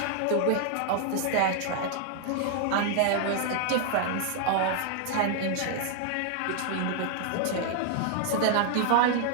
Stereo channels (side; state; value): both; different; correlation 0.00